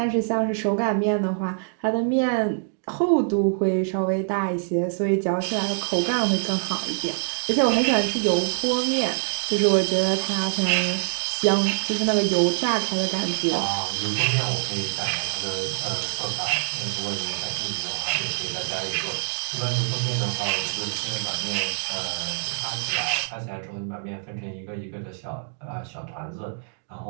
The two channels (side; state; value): left; silent; digital silence